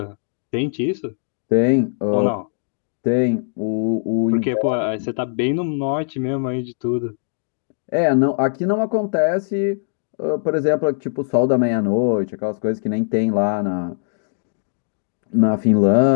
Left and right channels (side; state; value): right; silent; digital silence